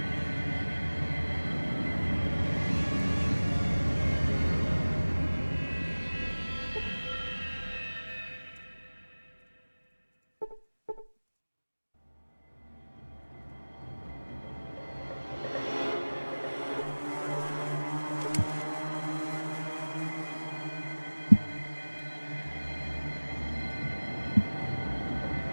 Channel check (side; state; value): both; inverted; correlation -1.00